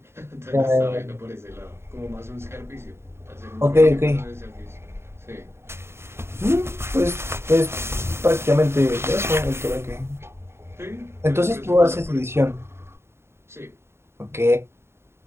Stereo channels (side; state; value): left; late; 0.12 ms